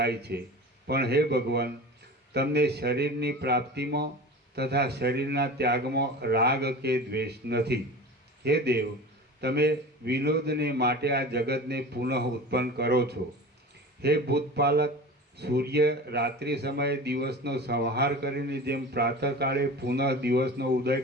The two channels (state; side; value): normal; both; correlation 0.34